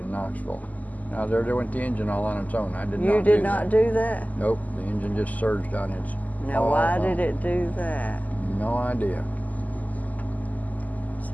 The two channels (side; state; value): right; late; 0.078 ms